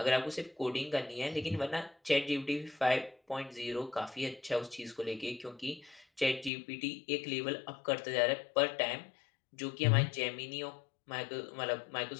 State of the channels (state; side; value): drops out; right; at 6.5 s